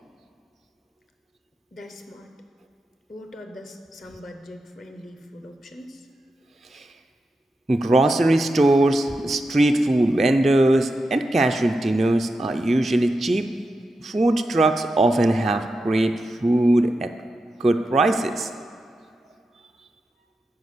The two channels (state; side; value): normal; both; correlation 0.89